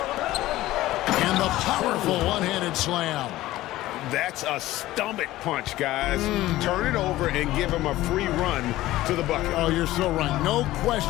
And the powerful one-handed slam. That's a stomach punch, guys. Turn it over and give him a free run to the bucket. Oh, you're so right. No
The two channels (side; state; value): right; quieter; 16.2 dB